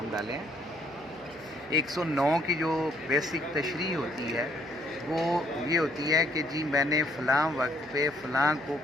डाले हैं। 109 की जो बेसिक तशरीह होती है वो ये होती है कि जी मैंने फ़लाँ वक्त पे फ़लाँ को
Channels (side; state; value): left; noise; hum, 28 dB below the sound